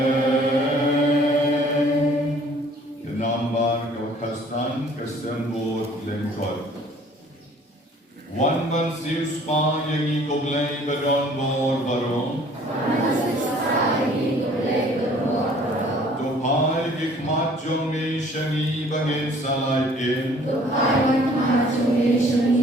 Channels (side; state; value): both; normal; correlation 0.55